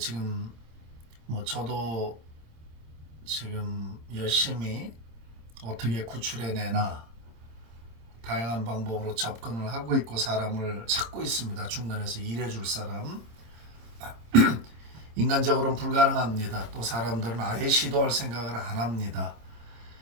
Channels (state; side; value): late; left; 26 ms